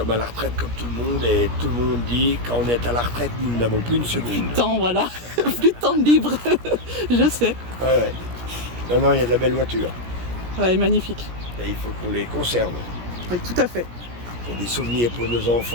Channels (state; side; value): late; left; 17 ms